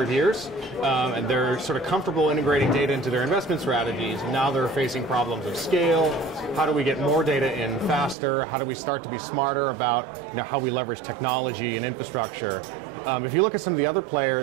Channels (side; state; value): left; drops out; at 8.2 s